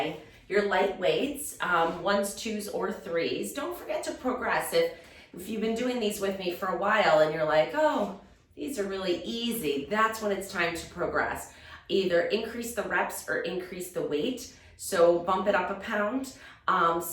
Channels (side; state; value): both; identical; correlation 1.00